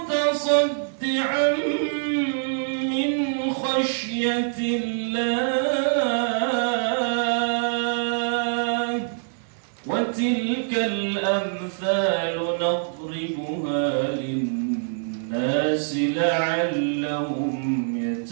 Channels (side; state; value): left; silent; digital silence